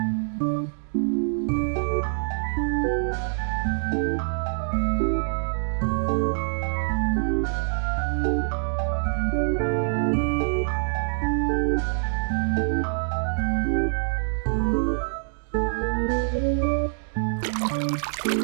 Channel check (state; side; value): silent; left; digital silence